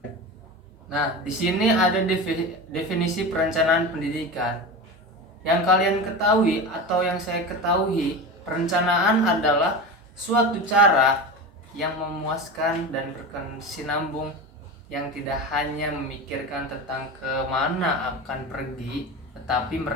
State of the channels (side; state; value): both; normal; correlation 0.26